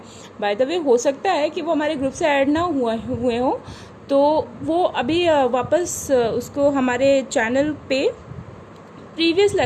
बाय द वे हो सकता है कि वो हमारे ग्रुप से ऐड ना हुए हों, तो वो अभी वापस उसको हमारे चैनल पे प्रीवियस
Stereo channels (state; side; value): identical; both; correlation 1.00